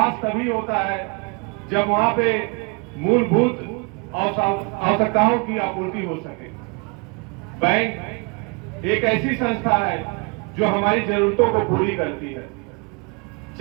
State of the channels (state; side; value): quieter; left; 32.2 dB